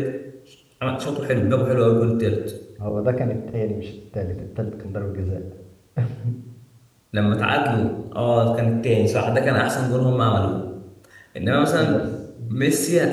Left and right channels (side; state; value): both; identical; correlation 1.00